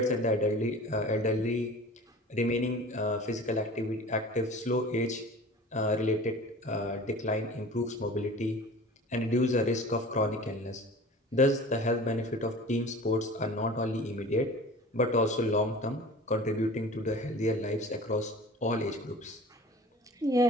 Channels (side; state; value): both; normal; correlation 0.41